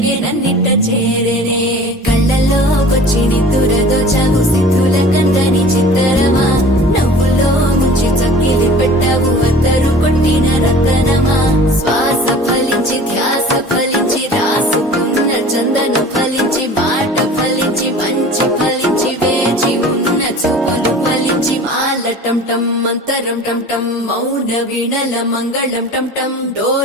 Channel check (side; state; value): both; normal; correlation 0.43